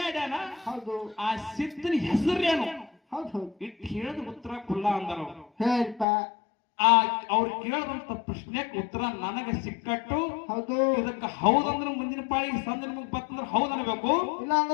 ಹೌದು ಆ ಸಿದ್ಧನ ಹೆಸರೇನು ಹೌದು ಹೌದು ಇಟ್ಟು ಹೇಳಿದ ಉತ್ತರ ಕುಲ್ಲ ಅಂದರು ಹೇಳ್ಪ ಆ ಅವ್ರು ಕೇಳದಂತ ಪ್ರಶ್ನೆಗೆ ಉತ್ತರ ನನಗೆ ಸಿಕ್ಕಟ್ಟು ಹೌದು ಇದಕ್ಕೆ ಹೌದಂದ್ರೆ ಮುಂದಿನ ಪಾಳಿಗೆ ಸಂದ ನಿಮಗ್ ಬತ್ತಂದ್ರೆ ಹೌದ್ ಅನ್ಬೇಕು ಇಲ್ಲ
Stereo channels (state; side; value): drops out; right; at 6.1 s